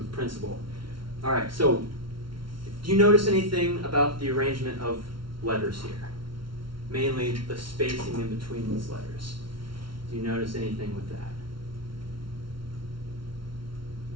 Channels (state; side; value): late; left; 0.74 ms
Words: principle. All right, so do you notice anything about the arrangement of letters here? Mainly the spacing in between these letters. Do you notice anything with that?